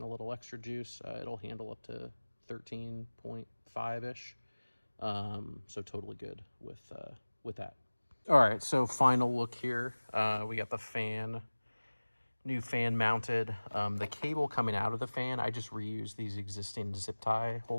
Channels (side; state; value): both; inverted; correlation -1.00